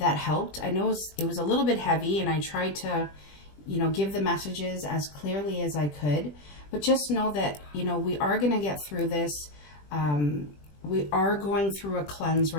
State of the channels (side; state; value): right; late; 20 ms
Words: helped. I know it was a little bit heavy, and I tried to, give the messages as clearly as I could. But just know that, we are going to get through this. We are going through a cleanse